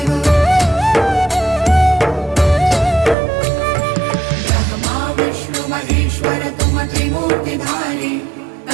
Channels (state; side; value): drops out; left; at 3.2 s